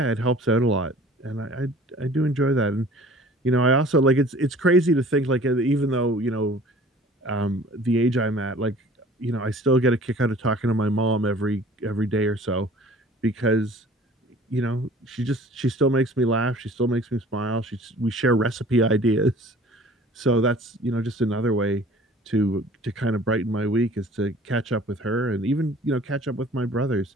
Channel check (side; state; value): both; normal; correlation 0.48